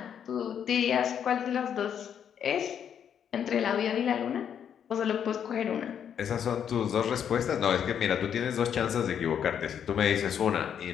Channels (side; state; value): right; quieter; 8.5 dB